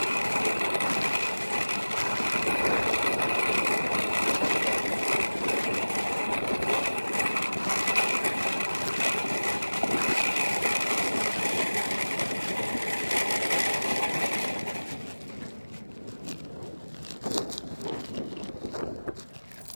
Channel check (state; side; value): inverted; both; correlation -1.00